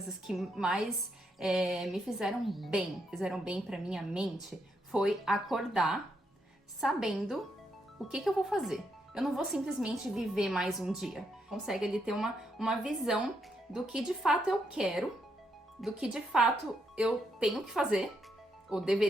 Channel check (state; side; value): normal; both; correlation 0.78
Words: que mais me fizeram bem pra minha mente, foi acordar sabendo o que eu vou fazer. Eu não vou simplesmente viver mais um dia. Consegue ali ter uma visão do que de fato eu quero, do que de fato eu tenho que fazer, ou